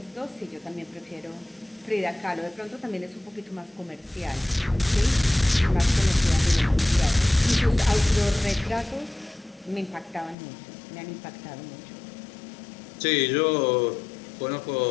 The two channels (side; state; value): right; drops out; at 10.4 s